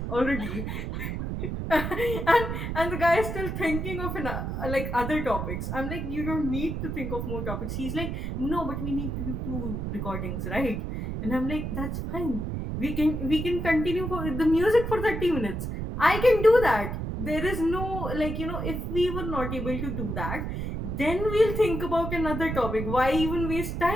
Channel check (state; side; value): noise; right; rumble, 4 dB below the sound